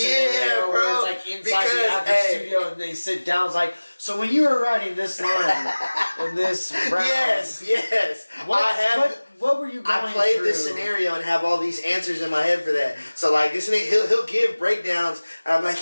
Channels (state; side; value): inverted; both; correlation -1.00